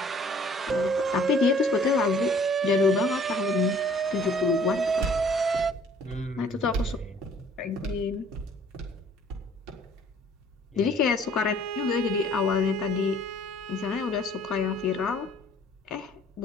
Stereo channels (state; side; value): normal; both; correlation 0.55